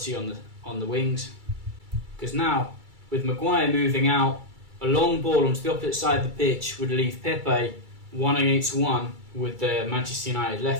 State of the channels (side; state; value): left; late; 2.3 ms